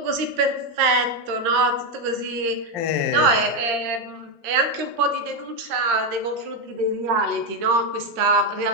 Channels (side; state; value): left; late; 13 ms